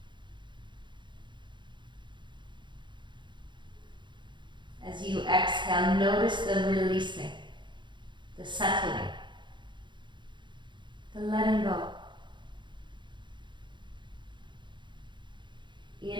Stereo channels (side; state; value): left; late; 0.23 ms